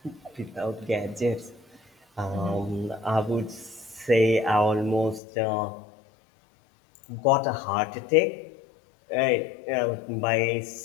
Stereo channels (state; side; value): drops out; right; at 5.2 s